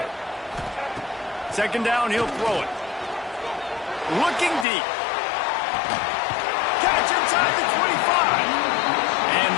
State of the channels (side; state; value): right; drops out; at 4.7 s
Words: Second down, he'll throw it. Looking deep. Catch inside the 25. And